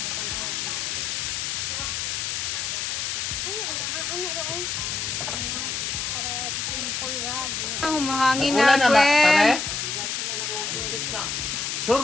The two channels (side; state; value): left; noise; hiss, 2 dB below the sound